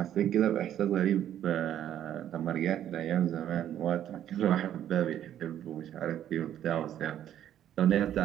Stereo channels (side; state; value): left; quieter; 10.9 dB